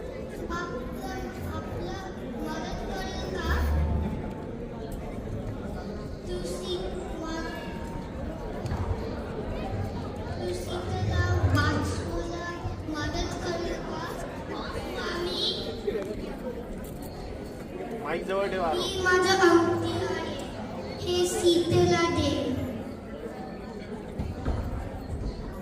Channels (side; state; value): both; identical; correlation 1.00